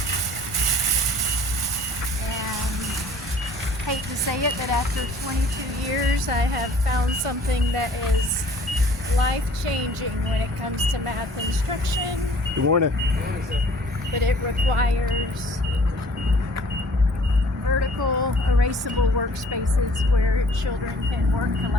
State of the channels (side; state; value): both; normal; correlation 0.53